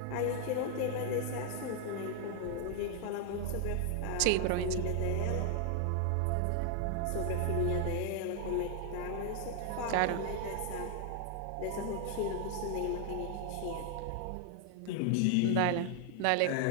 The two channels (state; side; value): different; both; correlation 0.00